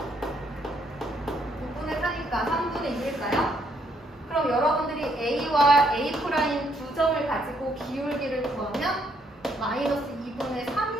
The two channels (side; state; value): both; normal; correlation 0.71